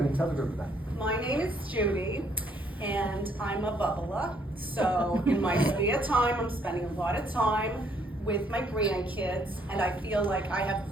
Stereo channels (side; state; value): both; normal; correlation 0.67